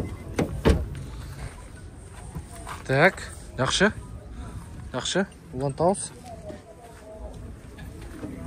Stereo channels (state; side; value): identical; both; correlation 1.00